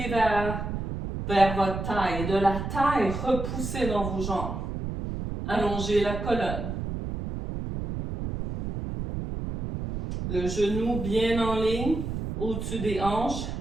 vers votre taille. Et de la taille, repoussez dans vos jambes. Allongez la colonne. Le genou bien en ligne, au-dessus des hanches,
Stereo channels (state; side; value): noise; right; rumble, 5 dB below the sound